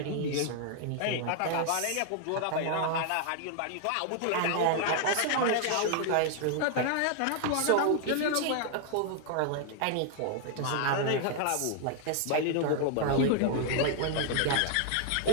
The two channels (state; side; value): different; both; correlation 0.00